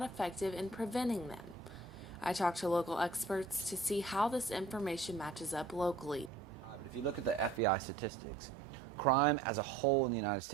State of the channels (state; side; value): drops out; left; at 7.6 s